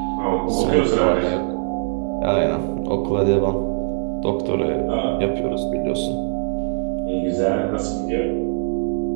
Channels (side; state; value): left; silent; 65 dB below the other